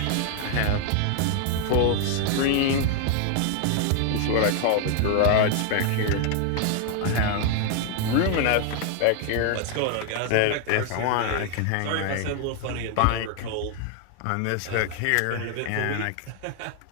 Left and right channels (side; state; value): both; different; correlation 0.00